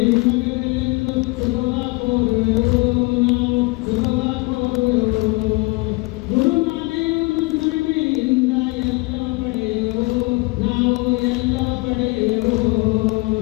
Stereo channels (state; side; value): quieter; right; 25.2 dB